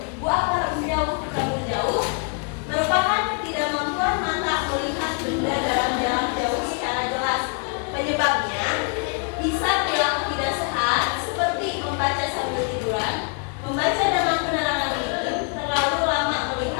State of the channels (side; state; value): right; quieter; 38.7 dB